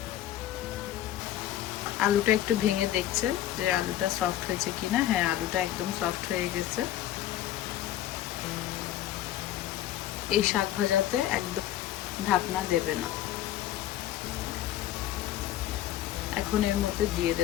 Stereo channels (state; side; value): quieter; right; 12.8 dB